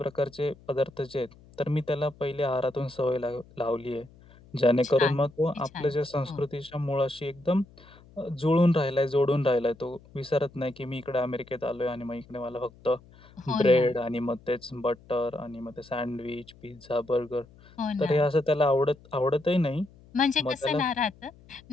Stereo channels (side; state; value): left; noise; hum, 24 dB below the sound